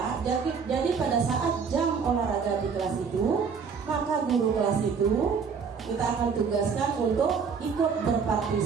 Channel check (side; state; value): left; quieter; 5.9 dB